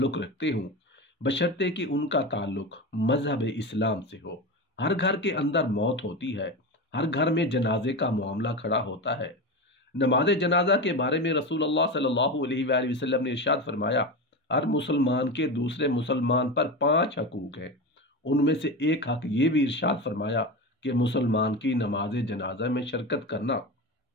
रखते हों, बशर्ते कि उनका ताल्लुक़ मज़हब इस्लाम से हो। हर घर के अंदर मौत होती है, हर घर में जनाजे का मामला खड़ा होता है। नमाज जनाजा के बारे में रसूलुल्लाह सल्लल्लाहु अलैहि वसल्लम ने इरशाद फरमाया, हर मुसलमान के दूसरे मुसलमान पर 5 हकूक़ हैं। उनमें से एक हक ये भी इरशाद फरमाया कि मुसलमान की नमाज जनाजा में शिरकत करना।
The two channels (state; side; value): normal; both; correlation 0.22